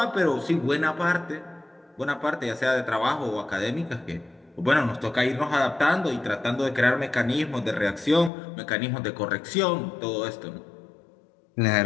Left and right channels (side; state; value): right; drops out; at 8.3 s